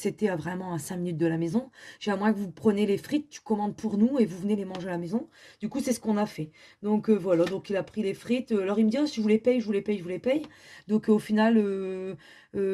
vraiment à 5 minutes de la maison, j'ai à moins que vous preniez les frites, tu commandes pour nous et vous venez les manger à la maison. Du coup, c'est ce qu'on a fait. Donc, voilà, donc il a pris les frites. Alors, il me dit, oh, si je vous les paye, je vous les paye, je vous les paye. Donc, au final,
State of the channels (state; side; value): identical; both; correlation 1.00